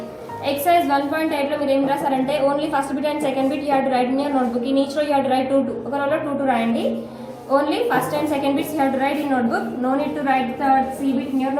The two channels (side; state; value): both; identical; correlation 1.00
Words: Exercise 1.8 లో మీరు ఏం రాసారంటే only first bit and second bit you have to write in your notebook. In each row you have to write 2 ఒక రోలో 2 రాయండి. Only first and second bits you have to write in notebook. No need to write the C bit in your